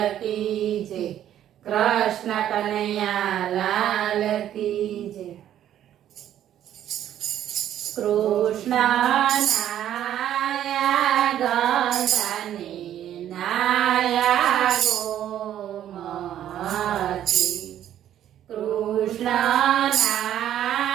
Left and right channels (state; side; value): quieter; left; 11.2 dB